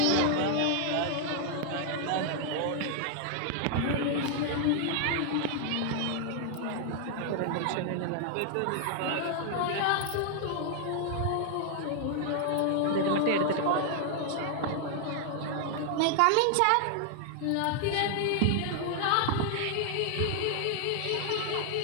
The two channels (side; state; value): both; different; correlation 0.00